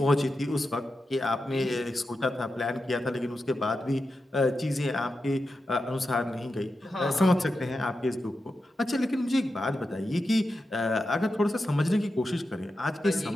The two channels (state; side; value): normal; both; correlation 0.90